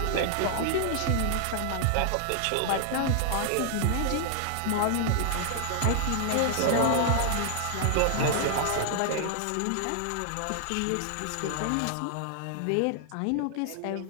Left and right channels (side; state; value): both; different; correlation 0.00